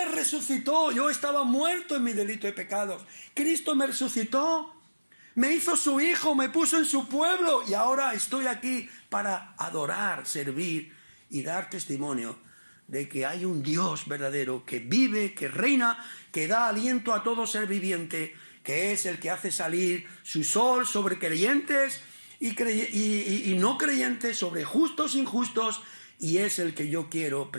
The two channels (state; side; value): inverted; both; correlation -1.00